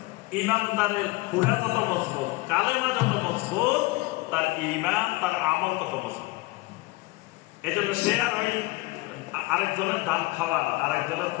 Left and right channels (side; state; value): right; quieter; 21.6 dB